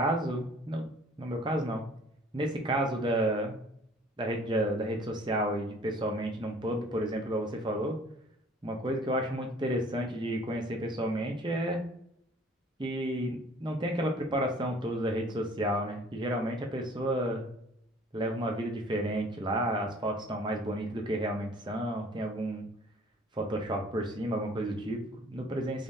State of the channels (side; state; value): both; normal; correlation 0.53